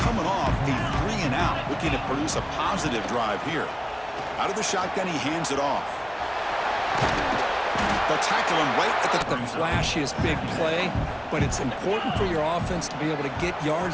off a 3-and-out, looking to produce a positive drive here. Out of the shotgun, he hands it off. They'll tackle him right at The flashiest big play, but it's important for your offense to be able to get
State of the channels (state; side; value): identical; both; correlation 1.00